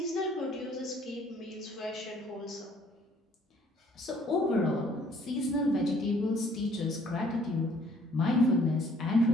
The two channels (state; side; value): normal; both; correlation 0.60